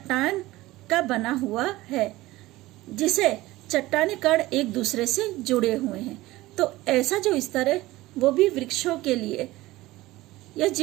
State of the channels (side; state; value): left; quieter; 18.1 dB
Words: का बना हुआ है, जिसे चट्टानी कण एक दूसरे से जुड़े हुए हैं। तो ऐसा जो स्तर है वो भी वृक्षों के लिए या